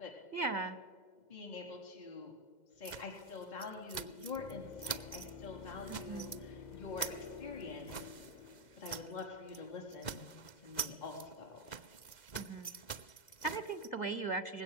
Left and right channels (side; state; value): right; late; 2.0 ms